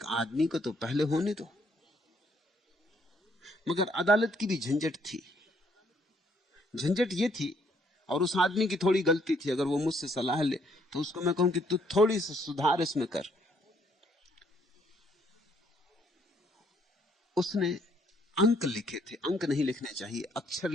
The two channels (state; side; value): normal; both; correlation 0.68